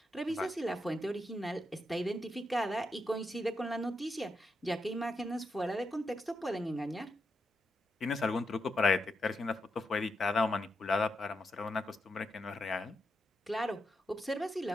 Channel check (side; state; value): both; normal; correlation 0.84